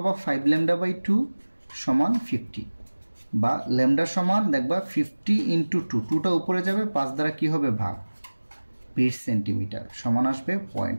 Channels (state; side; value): inverted; both; correlation -1.00